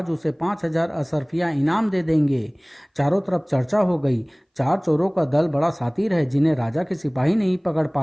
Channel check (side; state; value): both; identical; correlation 1.00